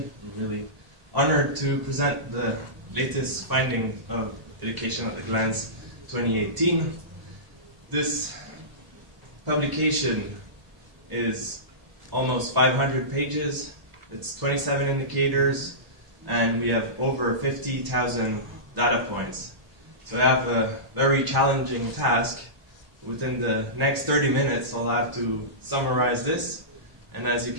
I'm really honored to present the latest findings of Education at a Glance 2018. This publication is almost 500 pages. It's 27 indicators, and we have over 50,000 data points. So I have a very challenging task. Within the next 30 minutes, I'll have to summarize this. And as you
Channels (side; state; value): left; late; 1.0 ms